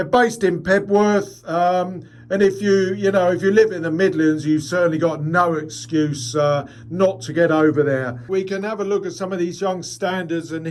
based in Pebworth, and if you live in the Midlands, you've certainly got no excuse not to get over there. We can have a look at some of these young standards, and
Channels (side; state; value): both; identical; correlation 1.00